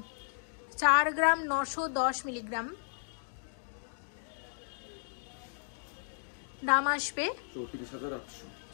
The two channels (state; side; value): silent; right; digital silence